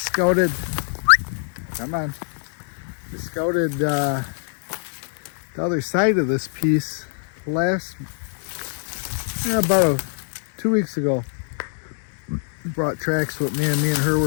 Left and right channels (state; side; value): silent; right; digital silence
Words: the other side of this piece about 2 weeks ago. Brought tracks with me and her